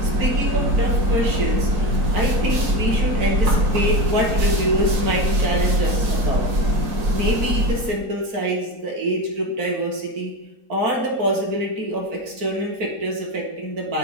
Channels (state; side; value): late; left; 4.4 ms